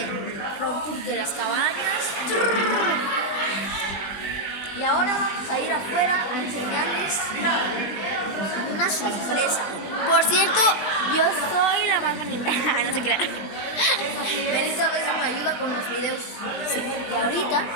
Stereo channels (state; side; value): late; right; 20 ms